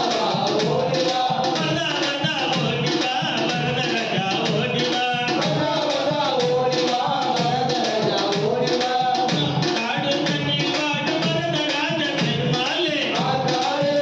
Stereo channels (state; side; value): identical; both; correlation 1.00